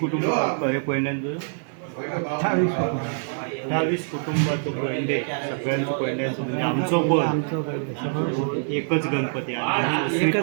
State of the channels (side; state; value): left; silent; digital silence